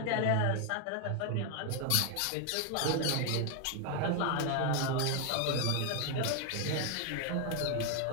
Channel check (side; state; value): both; different; correlation 0.01